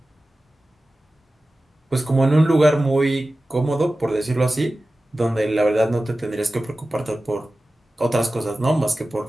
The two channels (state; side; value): normal; both; correlation 0.95